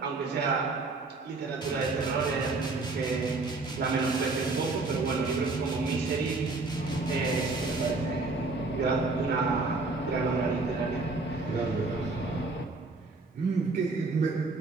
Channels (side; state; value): left; quieter; 3.6 dB